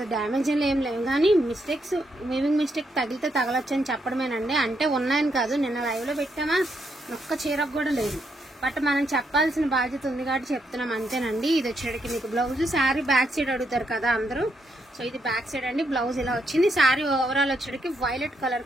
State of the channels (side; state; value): both; normal; correlation 0.78